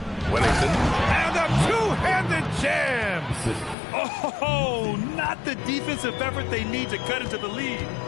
Wennington. And a two-handed jam. Oh, not the defensive effort they need to cut into the lead.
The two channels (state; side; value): drops out; right; at 3.8 s